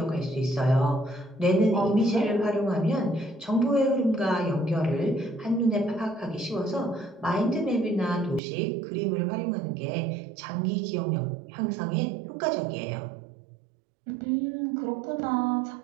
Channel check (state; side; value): drops out; left; at 8.4 s